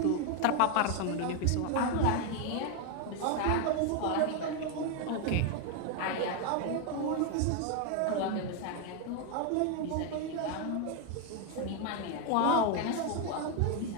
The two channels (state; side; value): different; both; correlation 0.01